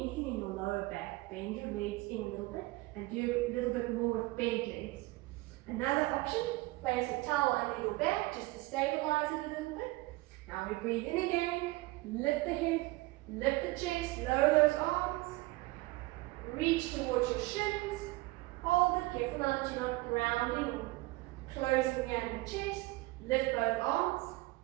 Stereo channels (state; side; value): quieter; left; 21.1 dB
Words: in your lower back, bend your legs in a little bit and do a little bit more with bent legs. Another option, place a towel under your back just to stabilize it a little bit. Now we breathe in again, lift the head, lift the chest, lower those arms, reach towards your shins, hold it, careful now that you're not grounding or closing down the chest, lift both arms,